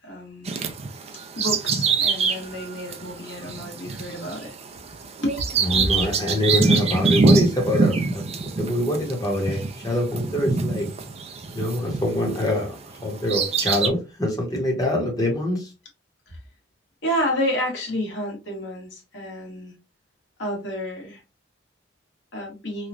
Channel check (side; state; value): both; normal; correlation 0.54